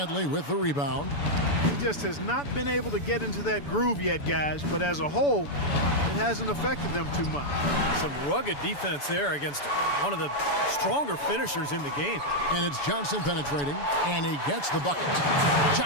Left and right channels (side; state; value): right; late; 7.0 ms